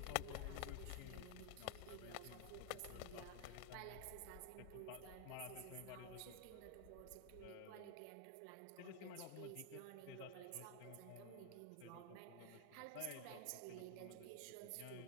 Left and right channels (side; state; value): both; different; correlation 0.00